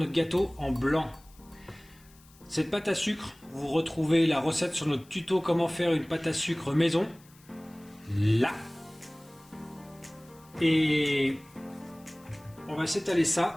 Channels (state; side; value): noise; left; hiss, 27 dB below the sound